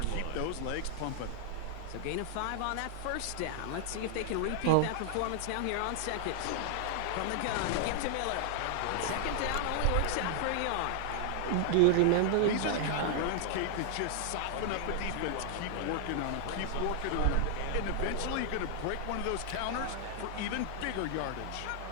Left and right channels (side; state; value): both; different; correlation 0.00